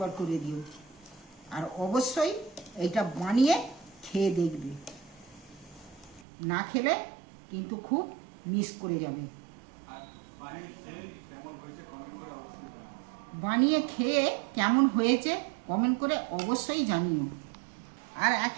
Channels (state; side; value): drops out; left; at 6.2 s